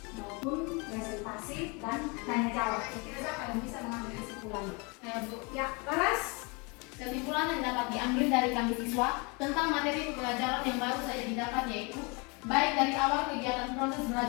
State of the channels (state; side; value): quieter; right; 29.8 dB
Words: maupun presentasi dan tanya jawab. Kira-kira siapa yang bisa mengambil kesimpulan? Saya Bu. Ya, Laras. Kesimpulan yang dapat diambil dari kami siswa tentang materi pembelajaran yang baru saja didapat yaitu baik dari awal kegiatan proses